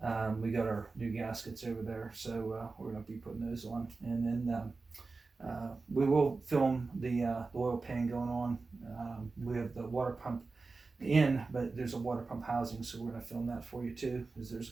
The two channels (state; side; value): quieter; left; 3.9 dB